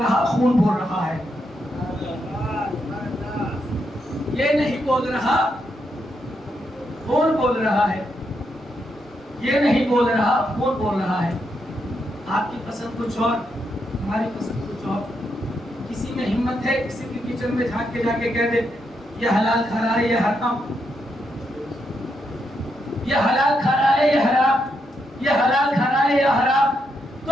رہا, خون بول رہا ہے. یہ نہیں بول رہا, خون بول رہا ہے. یہ نہیں بول رہا, خون بول رہا ہے. آپ کی پسند کچھ اور, ہماری پسند کچھ اور. کسی میں ہمت ہے کسی کے کچن میں جھانک کے جا کے کہہ دے یہ حلال کھا رہا ہے یہ حرام, یہ حلال کھا رہا ہے یہ حرام, یہ حلال کھا رہا ہے یہ حرام, تو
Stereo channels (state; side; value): normal; both; correlation 0.81